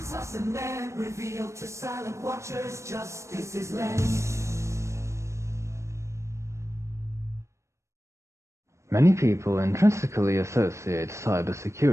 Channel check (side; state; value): left; late; 0.14 ms